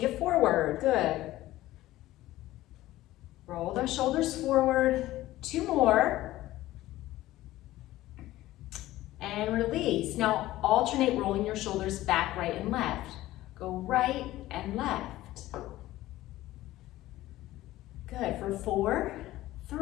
it forward. Good. Roll those shoulders forward. Two more. And release. Now alternate rolling your shoulders back, right, and left. Go right and left. Good. For 4,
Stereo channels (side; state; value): right; quieter; 16.0 dB